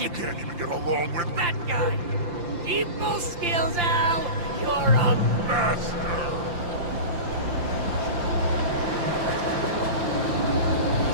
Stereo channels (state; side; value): late; left; 5.8 ms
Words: can't even get along with that guy. People skills, Al! You're a master!